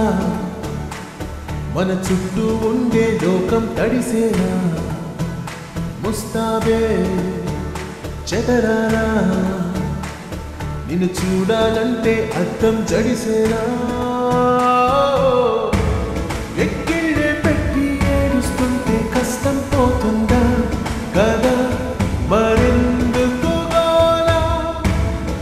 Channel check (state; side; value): identical; both; correlation 1.00